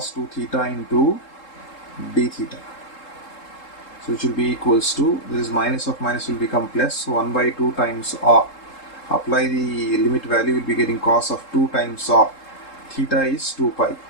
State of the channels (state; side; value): late; right; 3.7 ms